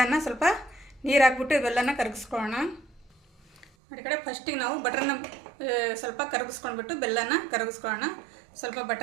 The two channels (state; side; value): drops out; left; at 3.7 s